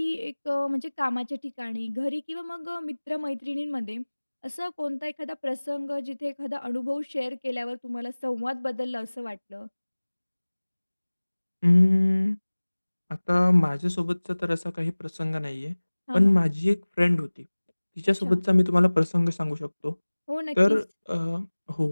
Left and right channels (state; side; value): inverted; both; correlation -1.00